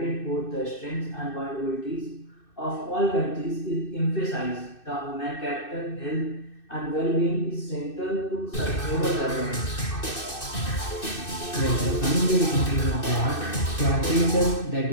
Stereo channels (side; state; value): right; late; 2.6 ms